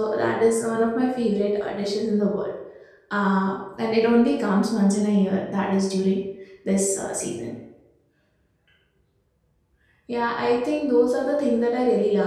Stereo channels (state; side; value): identical; both; correlation 1.00